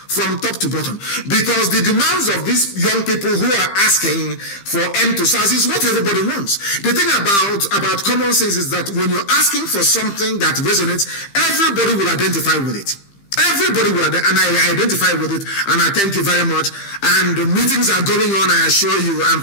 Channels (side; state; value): right; late; 15 ms